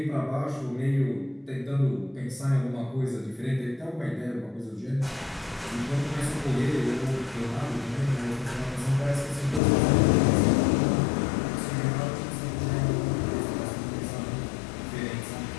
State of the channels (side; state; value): right; drops out; at 9.6 s